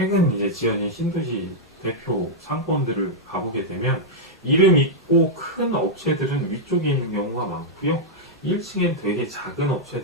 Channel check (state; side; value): normal; both; correlation -0.06